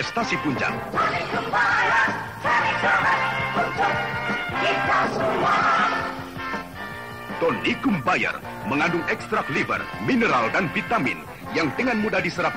puncak. Tonikum Bayar, cari sahabat untuk kita semua. Tonikum Bayar mengandung ekstrak liver, mineral dan vitamin yang dengan mudah diserap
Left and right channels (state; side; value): identical; both; correlation 1.00